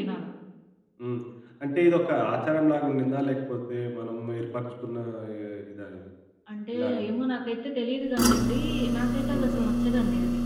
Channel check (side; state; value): both; identical; correlation 1.00